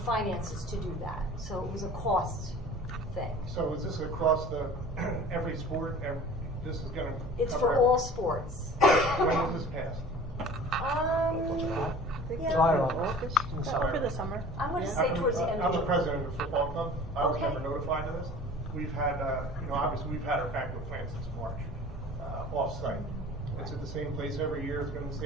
finances to do that. So it was a cost thing. So is this across every sport? This is going to. It's for all sports. When was this passed? July or August? Over the summer. I'm going to say towards the end I'm of the president of the football club. I was Okay. never notified of this. We've had, obviously we've had our banquet planned since March, off-site. It's at the same place every year. It's been in the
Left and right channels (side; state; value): both; normal; correlation 0.43